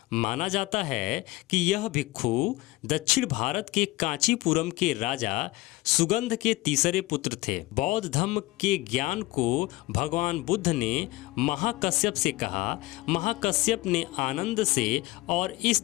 माना जाता है कि यह भिक्षु दक्षिण भारत के कांचीपुरम के राजा सुगंध के तीसरे पुत्र थे। बौद्ध धर्म के ज्ञान को भगवान बुद्ध ने महाकश्यप से कहा। महाकश्यप ने आनंद से, और इस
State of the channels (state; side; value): quieter; right; 20.2 dB